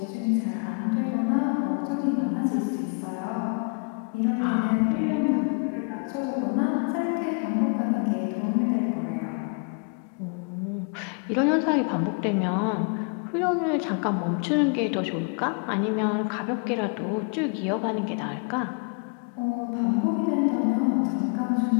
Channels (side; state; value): right; quieter; 38.8 dB